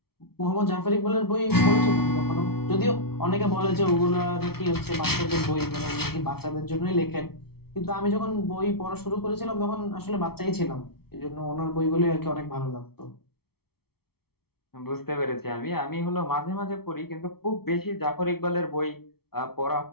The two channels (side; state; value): right; late; 0.95 ms